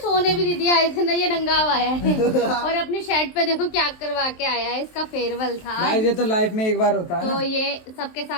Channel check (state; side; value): late; right; 23 ms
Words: भी नहीं दिया, इसने ये नंगा हुआ है और अपनी शर्ट पे देखो क्या करवा के आया है, इसका फेयरवेल था। भाई ये तो लाइफ में एक बार होता है तो ना। ये सबके